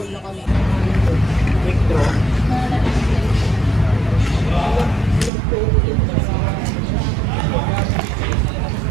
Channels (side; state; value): left; drops out; at 5.3 s